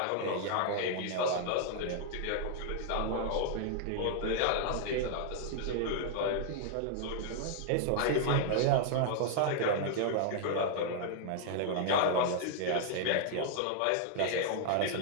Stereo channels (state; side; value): different; both; correlation -0.01